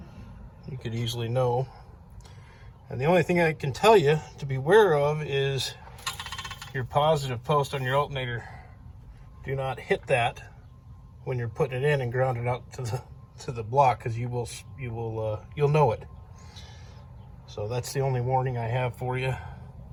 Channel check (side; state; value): both; identical; correlation 1.00